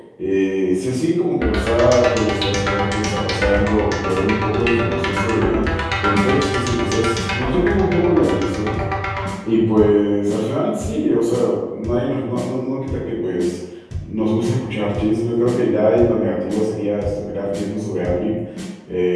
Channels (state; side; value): identical; both; correlation 1.00